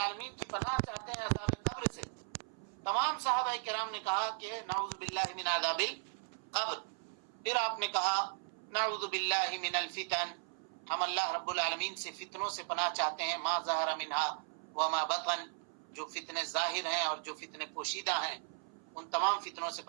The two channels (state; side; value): silent; left; 53 dB below the other